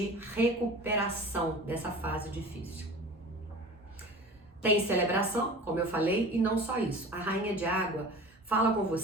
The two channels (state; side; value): normal; both; correlation 0.39